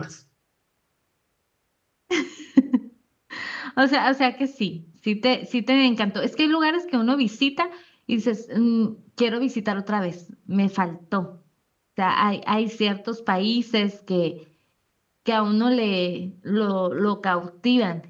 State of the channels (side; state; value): both; identical; correlation 1.00